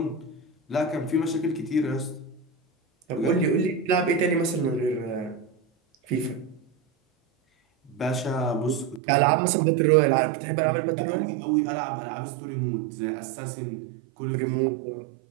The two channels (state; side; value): drops out; left; at 9.0 s